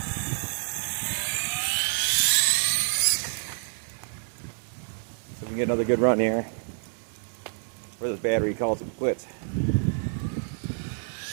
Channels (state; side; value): silent; left; 60 dB below the other